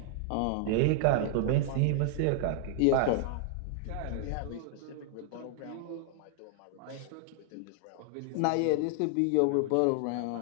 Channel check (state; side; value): different; both; correlation -0.01